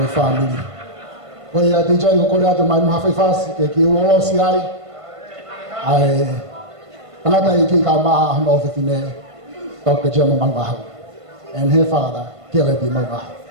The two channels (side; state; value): left; late; 1.5 ms